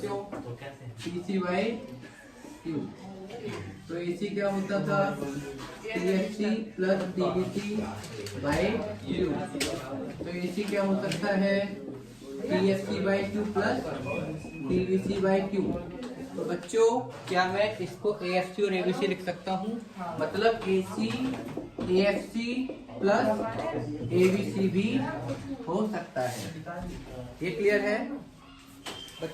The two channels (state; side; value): identical; both; correlation 1.00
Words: TC by Q। तो AC क्या होता था? TFC plus TVC by Q। तो AC क्या हो सकता है? TFC by Q plus TVC by Q। तो बच्चों क्या मैं इसको AFC और ABC लिख सकता हूँ? मतलब AC AFC प्लस ABC भी हो सकता है। ये क्लियर है